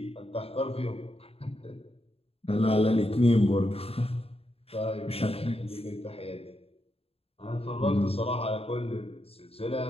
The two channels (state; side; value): late; right; 0.28 ms